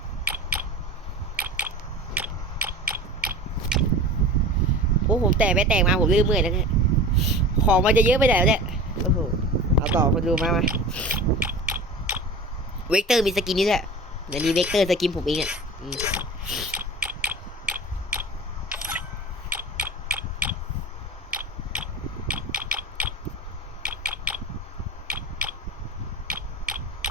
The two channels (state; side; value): normal; both; correlation 0.36